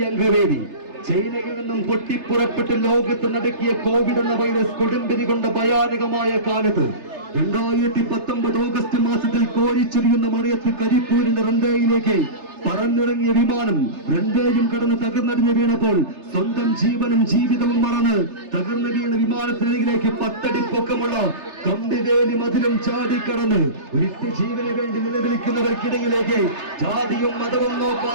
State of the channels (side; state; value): left; late; 3.3 ms